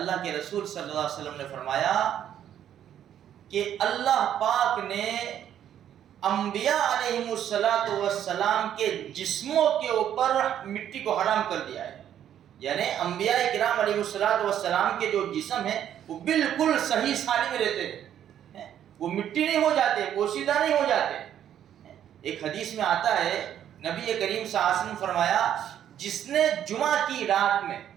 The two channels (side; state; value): left; quieter; 10.3 dB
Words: کے رسول صلی اللہ علیہ وسلم نے فرمایا کہ اللہ پاک نے انبیاء علیہم السلام کے جسموں کے اوپر مٹی کو حرام کر دیا ہے۔ یعنی انبیاء کرام علیہ السلام کے جو جسم ہیں وہ بالکل صحیح سالم رہتے ہیں، وہ مٹی نہیں ہو جاتے، پوشیدہ نہیں ہو جاتے۔ ایک حدیث میں آتا ہے نبی کریم صلی اللہ علیہ وسلم فرمایا جس نے جمعہ کی رات میں